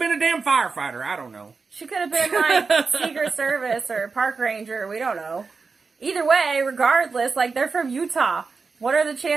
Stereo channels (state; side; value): quieter; left; 4.6 dB